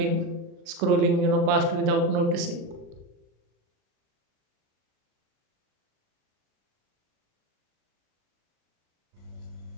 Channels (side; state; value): left; late; 36 ms